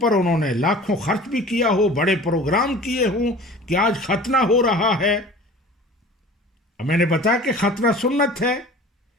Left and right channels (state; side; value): normal; both; correlation 0.42